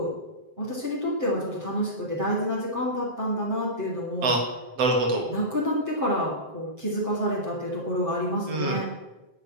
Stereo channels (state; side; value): late; left; 7.6 ms